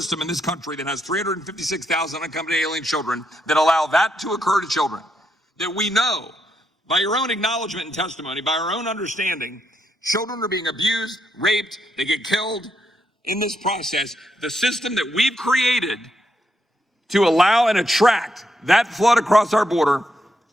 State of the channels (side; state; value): both; normal; correlation 0.80